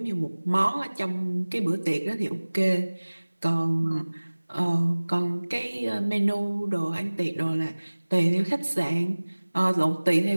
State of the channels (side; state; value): both; inverted; correlation -1.00